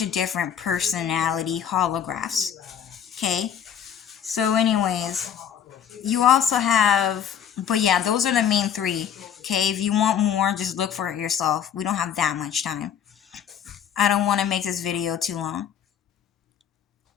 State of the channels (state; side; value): quieter; right; 8.9 dB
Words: of different personality holographs. Okay, so anyways, you also have, but yeah, those are the main three. Okay, if you want more, just look for it yourself. We don't have that much time. I don't want to make this video too long.